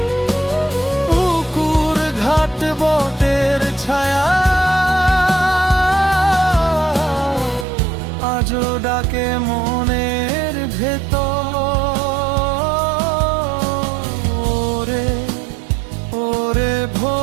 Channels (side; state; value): left; drops out; at 7.7 s